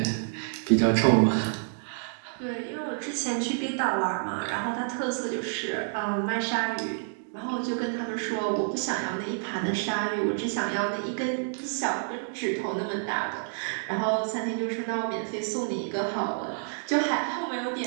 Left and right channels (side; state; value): left; silent; digital silence